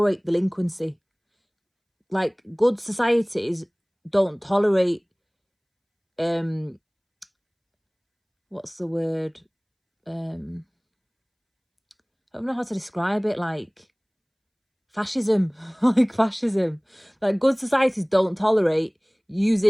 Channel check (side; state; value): both; identical; correlation 1.00